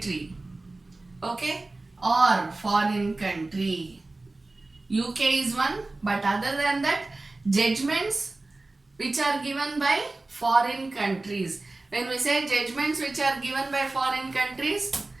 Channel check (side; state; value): left; quieter; 3.1 dB